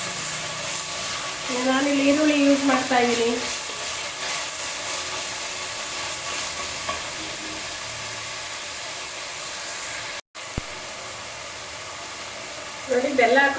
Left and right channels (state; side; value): identical; both; correlation 1.00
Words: ನಾನಿಲ್ಲಿ ಈರುಳ್ಳಿ ಯೂಸ್ ಮಾಡ್ತಾ ಇದ್ದೀನಿ. ನೋಡಿ ಬೆಲ್ಲ